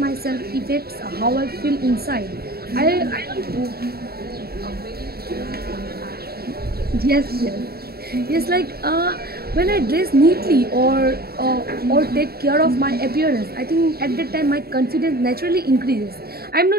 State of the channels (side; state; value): left; late; 0.45 ms